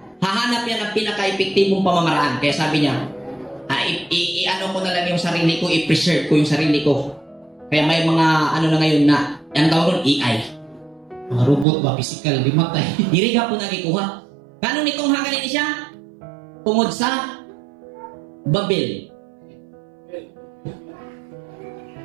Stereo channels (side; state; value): left; drops out; at 11.7 s